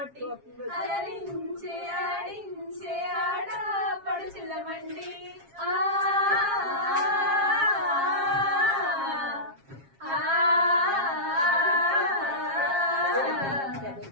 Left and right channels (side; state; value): left; late; 7.4 ms